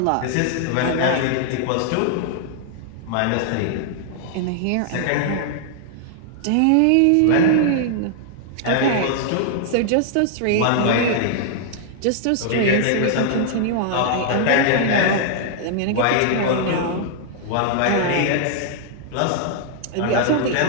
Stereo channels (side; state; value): both; different; correlation -0.01